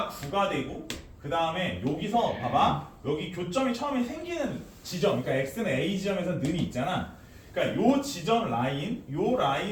9가 되고 그 다음에 여기서 봐봐 여기 교점이 처음에 생기는 지점 그러니까 x는 a 지점에서 는이 있잖아. 그러니까 요 지점 라인 요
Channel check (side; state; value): both; identical; correlation 1.00